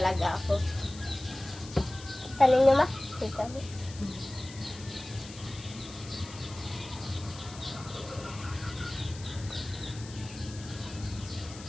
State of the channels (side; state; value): left; noise; hiss, 16 dB below the sound